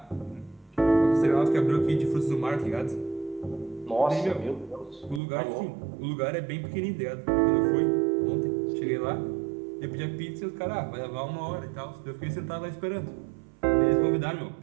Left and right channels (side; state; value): left; drops out; at 5.2 s